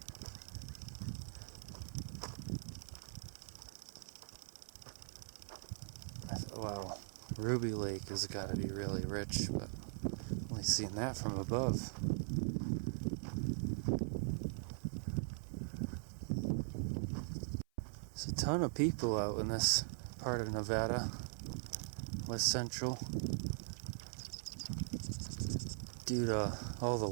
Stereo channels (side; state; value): left; silent; 50 dB below the other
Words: Wow, Ruby Lake has got to be really rich, but only seen that from above. There's a ton of people out in this part of Nevada. West Central, due to all the